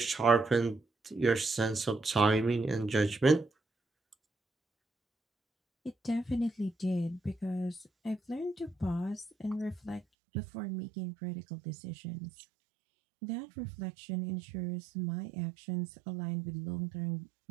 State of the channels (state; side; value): drops out; left; at 10.0 s